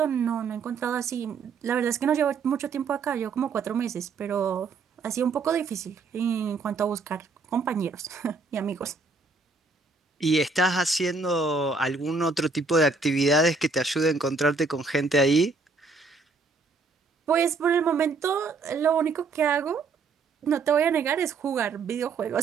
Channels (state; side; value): quieter; left; 4.2 dB